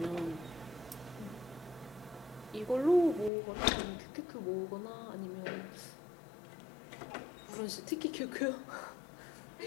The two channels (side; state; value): right; drops out; at 3.3 s